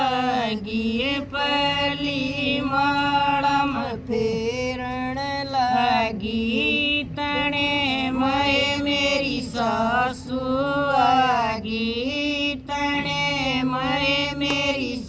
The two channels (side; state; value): both; identical; correlation 1.00